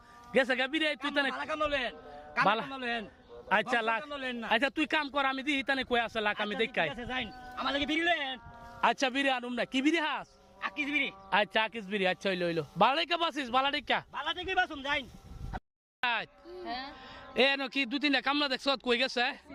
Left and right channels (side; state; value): both; identical; correlation 1.00